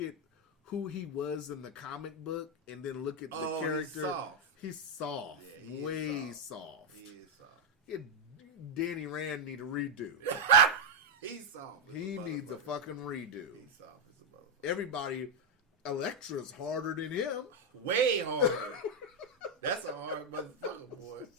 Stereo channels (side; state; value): both; normal; correlation 0.01